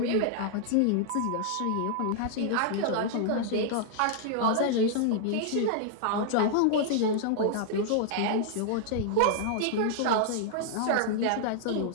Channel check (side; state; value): both; different; correlation -0.01